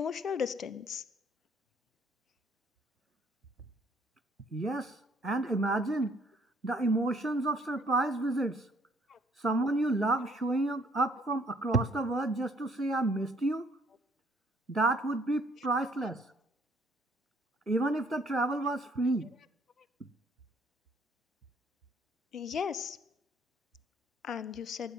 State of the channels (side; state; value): both; normal; correlation 0.63